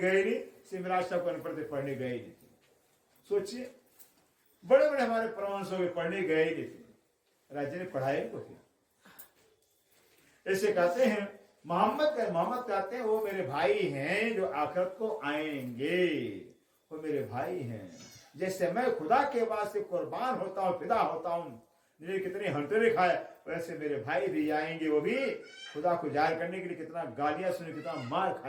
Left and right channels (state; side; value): identical; both; correlation 1.00